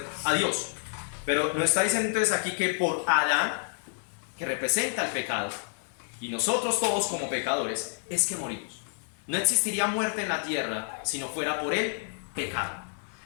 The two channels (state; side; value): silent; right; 59 dB below the other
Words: a Dios. Pero nos está diciendo entonces aquí que por Adán, que representa el pecado, y nosotros todos como pecadores, es que morimos. No existiría muerte en la tierra si no fuera por el pecado.